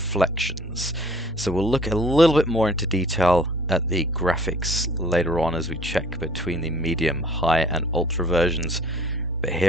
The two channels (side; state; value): both; normal; correlation 0.52